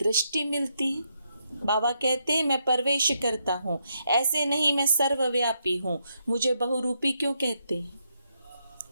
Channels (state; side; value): inverted; both; correlation -0.79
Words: मिलती है। बाबा कहते हैं, मैं प्रवेश करता हूँ, ऐसे नहीं मैं सर्वव्यापी हूँ। मुझे बहुरूपी क्यों कहते हैं?